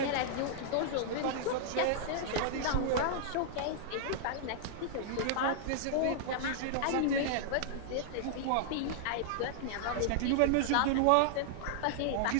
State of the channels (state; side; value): different; both; correlation -0.01